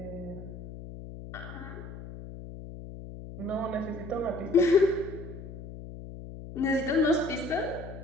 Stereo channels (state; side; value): noise; left; hum, 12 dB below the sound